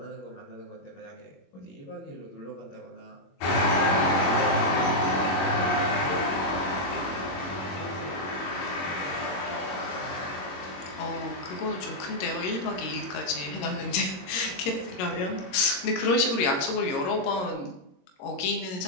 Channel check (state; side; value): late; right; 21 ms